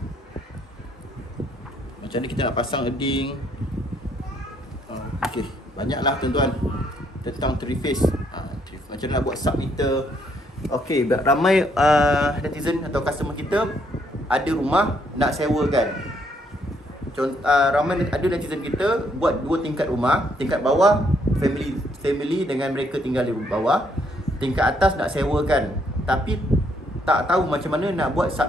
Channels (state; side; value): normal; both; correlation 0.71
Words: Macam mana kita nak pasang earding. Okey, banyaklah tuan-tuan tentang 3 phase. Macam mana nak buat submeter. Okey, ramai netizen atau customer kita ada rumah nak sewakan. Ramai ada netizen kita buat 2 tingkat rumah. Tingkat bawah family dengan mereka tinggal di bawah. Tingkat atas nak sewakan, tapi tak tahu macam mana nak buat